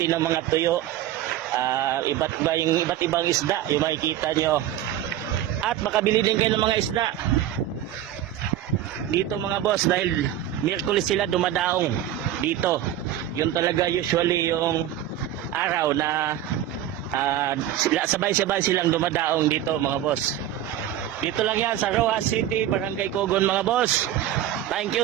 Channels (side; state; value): left; quieter; 11.8 dB